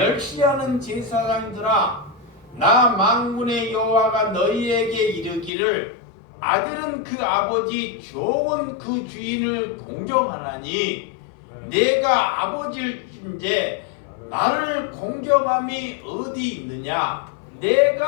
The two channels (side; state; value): right; drops out; at 5.5 s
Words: 제사장들아, 나 만군의 여호와가 너희에게 이르기를 아들은 그 아버지, 종은 그 주인을 공경하나니 내가 아버지일진데 나를 공경함이 어디 있느냐?